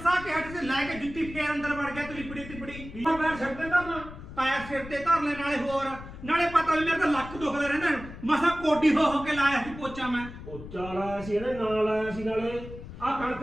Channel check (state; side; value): noise; left; rumble, 13 dB below the sound